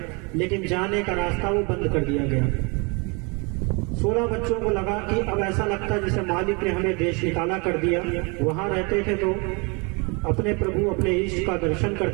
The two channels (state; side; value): quieter; left; 30.7 dB